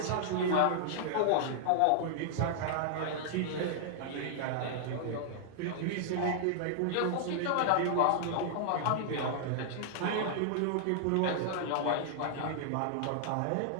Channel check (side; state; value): both; different; correlation -0.01